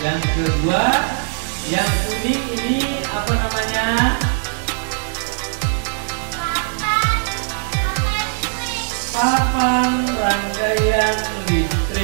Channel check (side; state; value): left; silent; 66 dB below the other